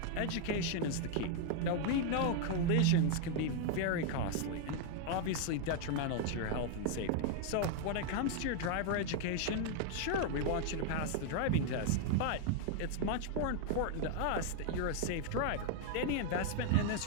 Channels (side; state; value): both; different; correlation 0.00